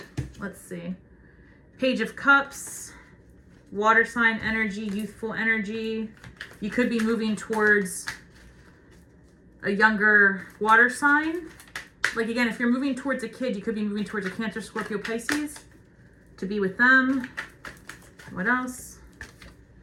Let's see. Page of Cups, water sign energy, youthful energy. You could be moving towards a younger water sign. Like again, if you're moving towards a kid, you could be moving towards a Cancer, Scorpio, Pisces to be with them. What else?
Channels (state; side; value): identical; both; correlation 1.00